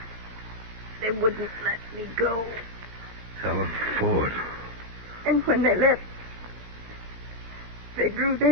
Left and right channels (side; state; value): left; late; 17 ms